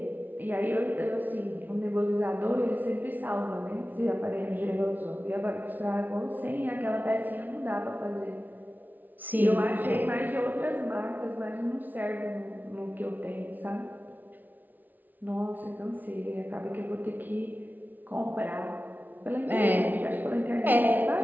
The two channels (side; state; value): left; late; 0.083 ms